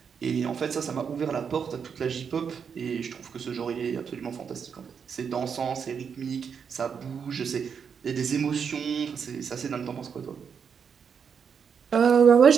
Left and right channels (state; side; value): quieter; left; 6.7 dB